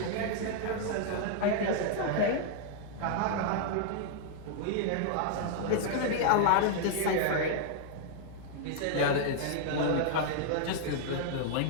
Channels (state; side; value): different; both; correlation -0.01